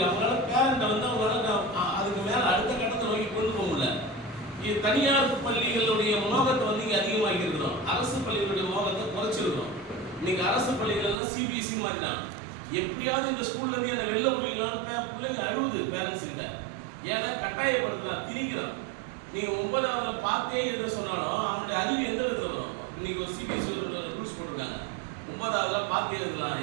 அவங்களால பேரண்ட்டை வந்து அவங்களால அதுக்கு மேலே அடுத்த கட்டத்தை நோக்கி கொண்டு போக முடியல. தனியார் பள்ளிகளுடைய மோகத்தை வந்து இங்கே அதிகமாகி இருக்கிறோம், அரசு பள்ளிகளுடைய மோகத்தை குறைச்சிருக்கிறோம். இன்னைக்கு அரசு பள்ளிகளெல்லாம் சிபிஎஸ்சி மாற்றினாங்க. எப்படியாவது இந்த ஸ்கூல்லேருந்து என்ன வெளில முடியலான்னு பிள்ளைங்க அழுகுது பேரண்ட்ஸ் கிட்ட. ஏன்னா கட்டாயப்படுத்தலாம், திணிக்கிறான். நீங்கள் 9வதுல பார்த்தே எழுத சொன்னாலும் அவனுடைய அறிவு எந்த விதத்தில் வரும்? இன்னைக்கு ஒரு சிபிஎஸ்சி ரூல்ஸ் போட்டிருக்காங்க, 9வதுல பார்த்தே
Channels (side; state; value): left; drops out; at 11.2 s